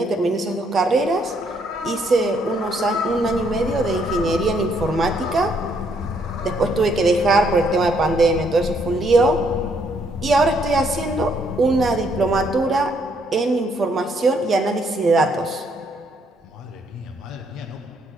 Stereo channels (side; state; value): both; normal; correlation 0.70